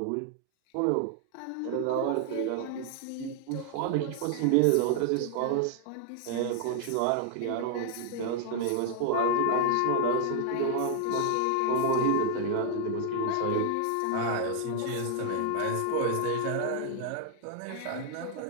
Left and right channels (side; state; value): both; different; correlation 0.00